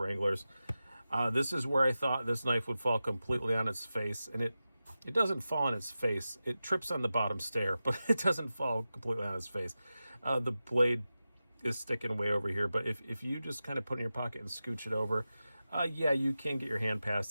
This is where I thought this knife would fall completely on its face, and it doesn't fall on its face. It trips on the bottom stair, but it doesn't fall completely on its face. The blade is sticking way over here, but if you just kind of put it in your pocket and scooch it over, yeah, you can get your hand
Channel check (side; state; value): both; inverted; correlation -0.93